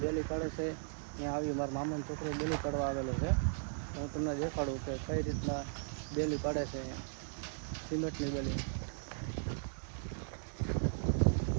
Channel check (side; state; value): left; silent; digital silence